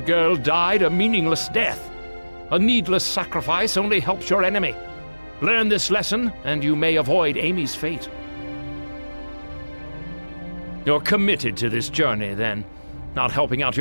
girl died a meaningless death. A needless sacrifice only helps your enemy. Learn this lesson, and you may avoid Amy's fate. You're committed to this journey, then. Not helping out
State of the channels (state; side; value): inverted; both; correlation -1.00